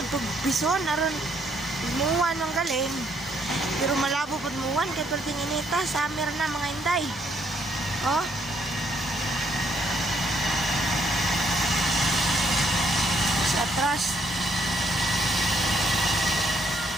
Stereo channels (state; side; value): normal; both; correlation 0.71